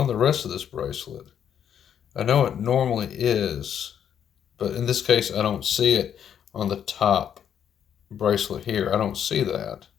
the rest of this bracelet. I know it normally is, but in this case, I don't see it on the top bracelet here. I don't see that.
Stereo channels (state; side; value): quieter; right; 8.9 dB